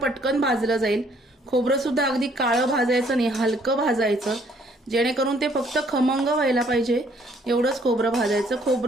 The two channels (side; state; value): both; normal; correlation 0.64